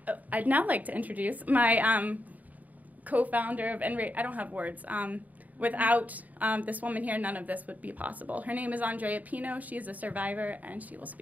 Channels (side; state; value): left; late; 0.076 ms